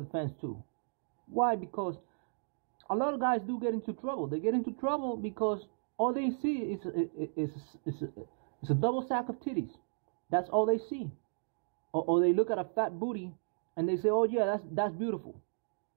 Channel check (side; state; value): left; silent; digital silence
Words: the fence too. Why? Because a lot of guys do get into trouble. They get into trouble because all they see is a double sack of titties. That's all they see. Or they look at a fat booty and they say, oh yeah, that's beautiful.